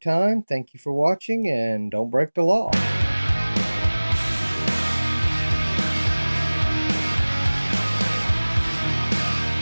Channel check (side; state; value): both; inverted; correlation -1.00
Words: Thank you for watching, and don't break the law.